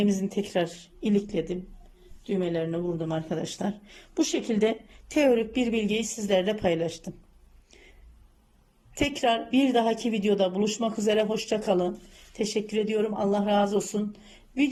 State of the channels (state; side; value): identical; both; correlation 1.00